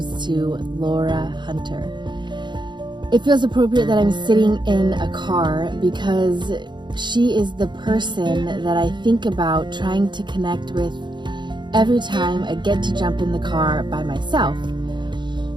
to Laura Hunter. It feels appropriate that I'm sitting in a car because she is the person that I think about trying to connect with every time I get to jump in the car by myself.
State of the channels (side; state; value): left; late; 0.22 ms